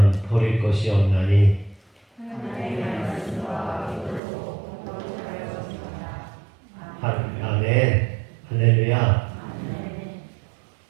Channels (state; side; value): drops out; left; at 4.2 s